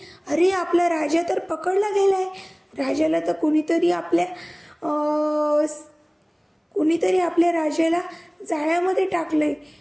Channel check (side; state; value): both; identical; correlation 1.00